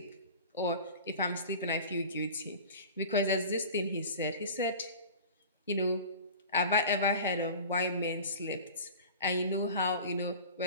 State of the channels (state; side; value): inverted; both; correlation -0.38